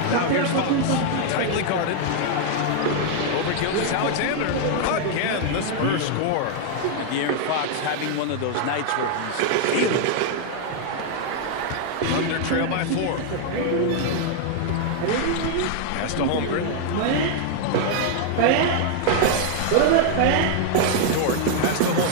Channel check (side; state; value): both; different; correlation 0.00